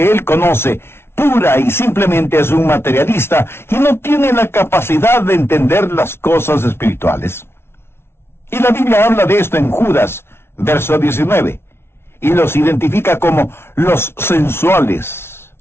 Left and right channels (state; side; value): late; right; 0.12 ms